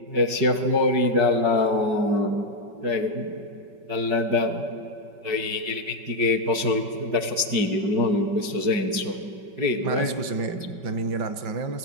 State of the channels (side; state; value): left; late; 5.3 ms